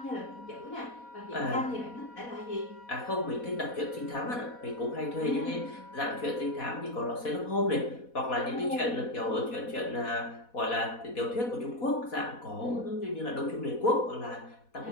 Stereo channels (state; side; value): late; right; 4.1 ms